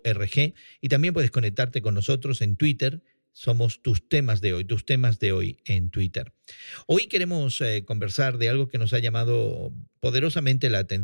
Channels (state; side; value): inverted; both; correlation -1.00